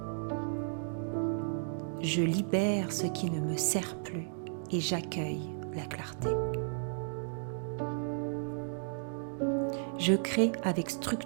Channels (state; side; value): silent; left; digital silence